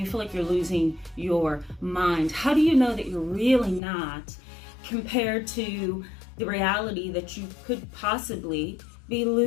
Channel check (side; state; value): right; drops out; at 3.8 s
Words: feel like you're losing your mind? How do you know that you're really not, compared to the reality that you could possibly be